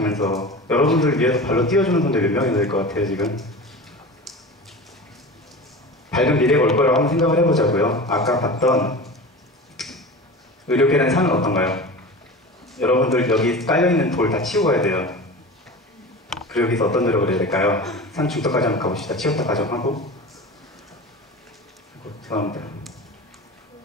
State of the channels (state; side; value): normal; both; correlation 0.32